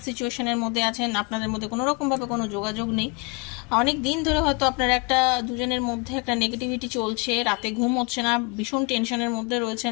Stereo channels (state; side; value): quieter; right; 29.5 dB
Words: সিচুয়েশনের মধ্যে আছেন, আপনাদের মধ্যে কোনো রকমভাবে কোনো যোগাযোগ নেই। অনেক দিন ধরে হয়তো আপনারা একটা দুজনের মধ্যে একটা নেগেটিভিটি চলছে, রাতে ঘুম হচ্ছে না, ভীষণ টেনশনের মধ্যে